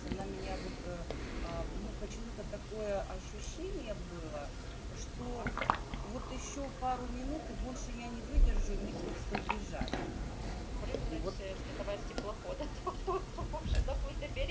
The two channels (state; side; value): identical; both; correlation 1.00